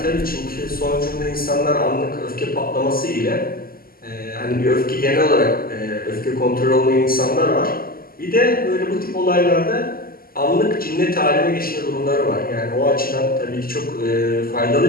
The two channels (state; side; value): late; right; 0.42 ms